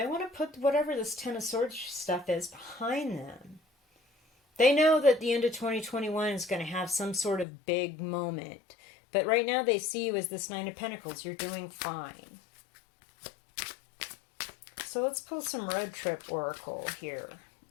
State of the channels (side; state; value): right; drops out; at 7.5 s